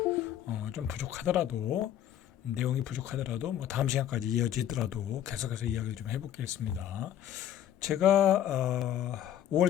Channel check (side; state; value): right; quieter; 11.0 dB